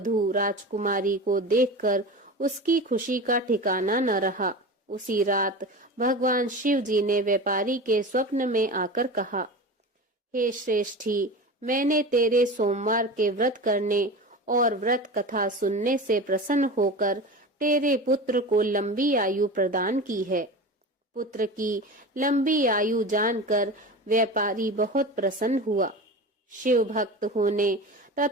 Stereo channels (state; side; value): normal; both; correlation 0.30